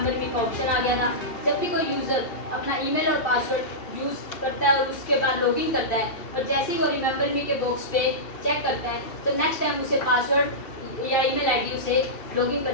मी का ऑप्शन आ गया था। जब भी कोई यूज़र अपना ईमेल और पासवर्ड यूज़ करता है और उसके बाद लॉगिन करता है और जैसे ही वो रिमेंबर मी के बॉक्स पे चेक करता है, तो नेक्स्ट टाइम उसे पासवर्ड या ईमेल आईडी उसे लॉगिन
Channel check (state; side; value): late; right; 2.7 ms